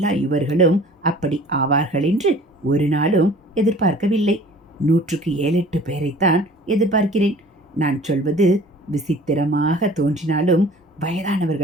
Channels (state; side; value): normal; both; correlation 0.48